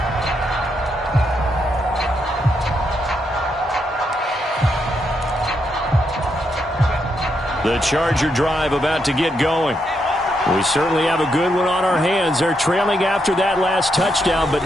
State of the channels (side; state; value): both; normal; correlation 0.80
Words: The Charger drive about to get going. We certainly have a good one on our hands. They're trailing after that last touchdown, but